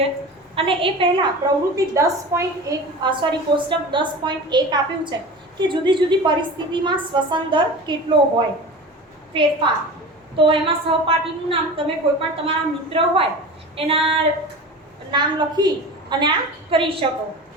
અને એ પહેલા પ્રવૃત્તિ 10.1 કોષ્ટક 10.1 આપ્યું છે કે જુદી જુદી પરિસ્થિતિમાં શ્વસન દર કેટલો હોય ફેરફાર. તો એમાં સહપાઠીનું નામ તમે કોઈ પણ તમારા મિત્ર હોય એના નામ લખી અને આ કરી શકો.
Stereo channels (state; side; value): normal; both; correlation 0.33